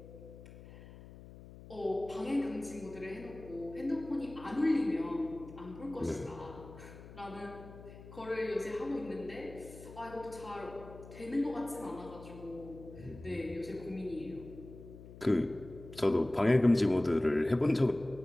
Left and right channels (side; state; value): left; noise; hum, 16 dB below the sound